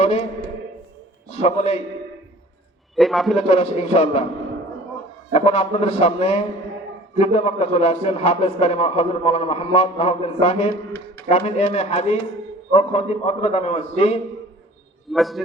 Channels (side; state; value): both; normal; correlation 0.47